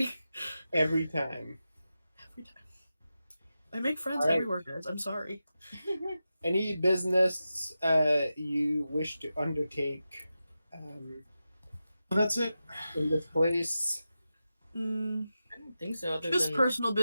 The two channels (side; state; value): both; inverted; correlation -0.91